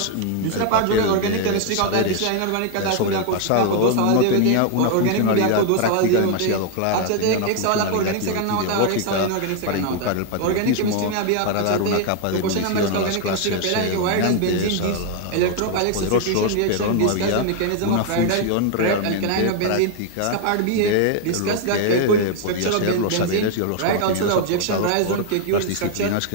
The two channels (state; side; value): different; both; correlation 0.01